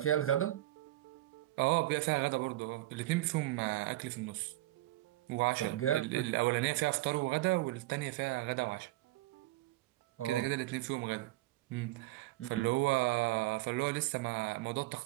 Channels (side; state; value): left; quieter; 17.0 dB